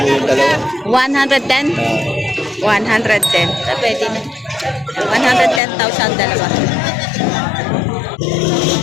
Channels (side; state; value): right; drops out; at 5.6 s